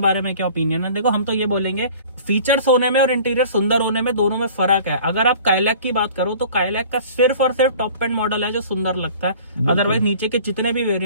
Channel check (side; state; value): both; inverted; correlation -0.46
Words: बारे में क्या ओपिनियन है? देखो हम तो ये बोलेंगे फीचर्स होने में और इंटीरियर सुंदर होने में दोनों में फर्क है। अगर आप काइलैक की बात करो तो काइलैक का सिर्फ और सिर्फ टॉप एंड मॉडल है जो सुंदर लगता है। अदरवाइज नीचे के जितने भी